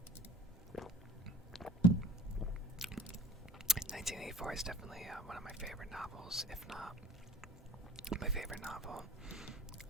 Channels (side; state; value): both; normal; correlation 0.46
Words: 1984 is definitely one of my favorite novels, if not my favorite novel.